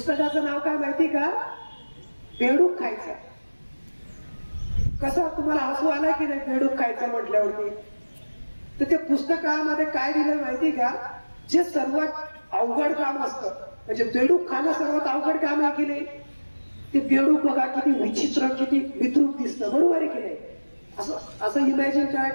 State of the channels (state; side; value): inverted; both; correlation -1.00